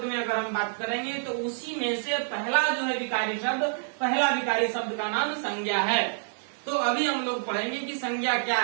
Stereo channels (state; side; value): silent; left; 56 dB below the other